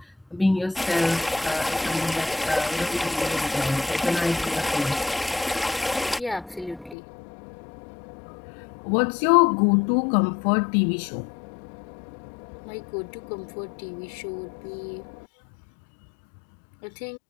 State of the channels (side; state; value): right; drops out; at 7.0 s